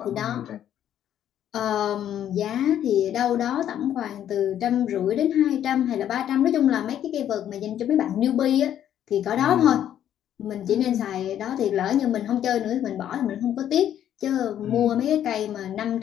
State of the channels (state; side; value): quieter; right; 10.6 dB